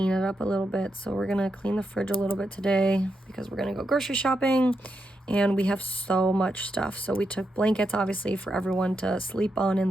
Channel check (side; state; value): both; normal; correlation 0.84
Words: it up a little bit. So we're going to clean the fridge a little bit today because we're going to go grocery shopping. And we have so much stuff. So we took blankets, obviously, for everyone to sleep on in